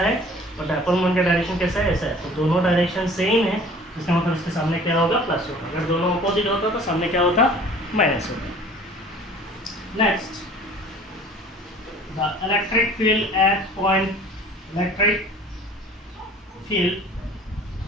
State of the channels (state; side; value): normal; both; correlation 0.48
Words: और डायपोल मोमेंट का डायरेक्शन कैसा है ऐसा है. तो दोनों डायरेक्शन सेम है. इसका मतलब इसके सामने क्या होगा प्लस होगा. अगर दोनों अपोजिट होता तो सामने क्या होता माइनस होता. Next the electric field at